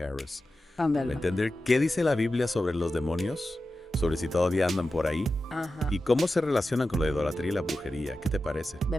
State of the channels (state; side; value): normal; both; correlation 0.93